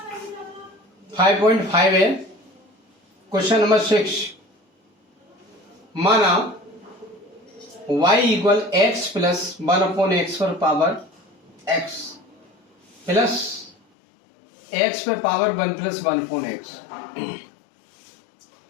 5.5 है। क्वेश्चन नंबर 6, माना y equal x plus 1/x पर पावर x प्लस x पे पावर 1 प्लस 1/x।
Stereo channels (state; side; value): drops out; right; at 13.8 s